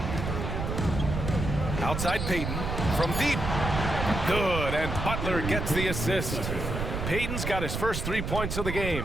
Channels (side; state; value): right; noise; rumble, 3 dB below the sound